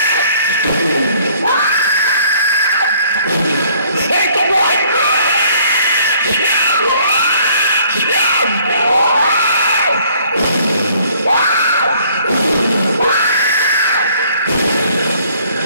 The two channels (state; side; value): inverted; both; correlation -0.60